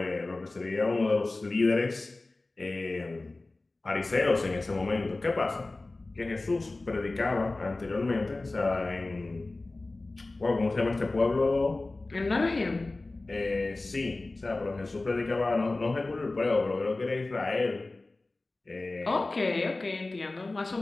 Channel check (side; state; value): right; quieter; 3.1 dB